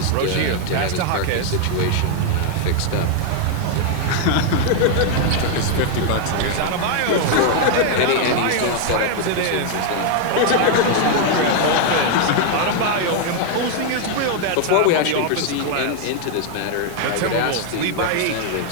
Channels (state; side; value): different; both; correlation 0.00